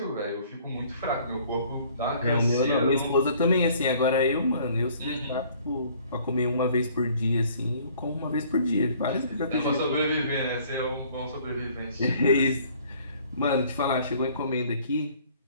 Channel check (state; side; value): inverted; both; correlation -0.56